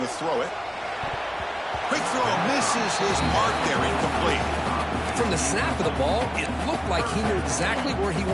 to throw it. Quick throw, misses his mark there, incomplete. From the snap of the ball, it looked like he knew exactly where he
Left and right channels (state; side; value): identical; both; correlation 1.00